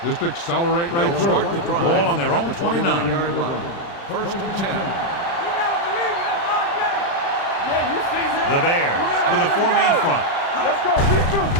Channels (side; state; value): right; late; 35 ms